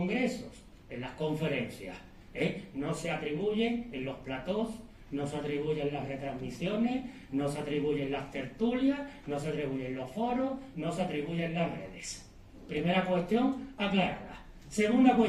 en las conferencias. No se atribuye en los platós, no se atribuye en las retransmisiones, no se atribuye en las tertulias, no se atribuye en los foros, no se atribuye en las redes. Primera cuestión aclarada. Segunda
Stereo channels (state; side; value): identical; both; correlation 1.00